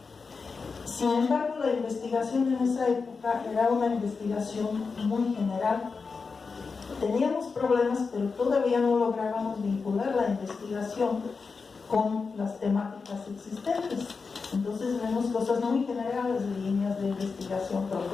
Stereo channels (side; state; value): right; quieter; 4.8 dB